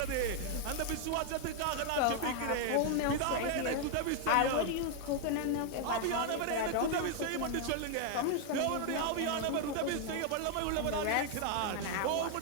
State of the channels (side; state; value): both; different; correlation 0.00